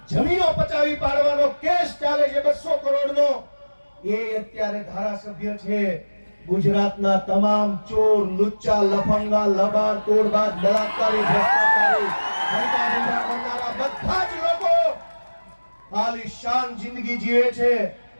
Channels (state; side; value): inverted; both; correlation -1.00